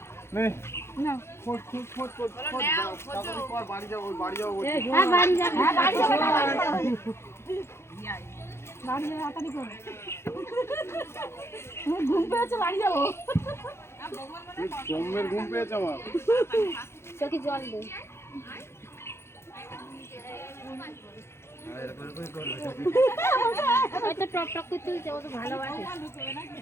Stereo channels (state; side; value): late; right; 0.12 ms